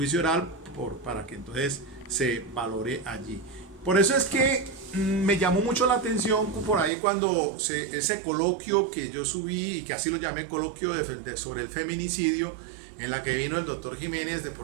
oral para que entonces se valore allí. Por eso es que me llamó mucho la atención por ahí cuando ese coloquio que yo subí y que así lo llamé coloquio sobre el feminicidio, en la que vino el doctor Jiménez de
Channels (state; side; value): drops out; left; at 6.9 s